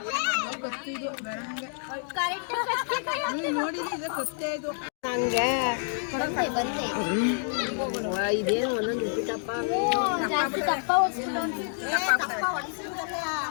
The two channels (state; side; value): silent; right; 59 dB below the other